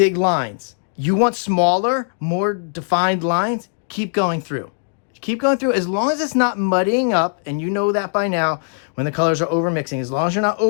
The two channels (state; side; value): silent; right; digital silence